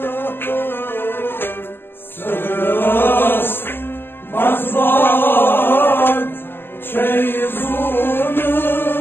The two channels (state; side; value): late; right; 0.10 ms